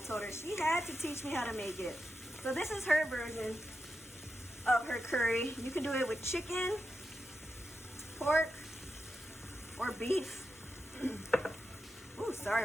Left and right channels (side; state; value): both; normal; correlation 0.88